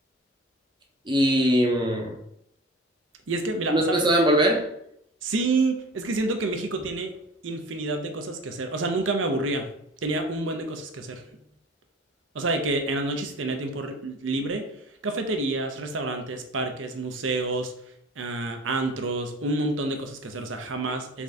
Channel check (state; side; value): normal; both; correlation 0.41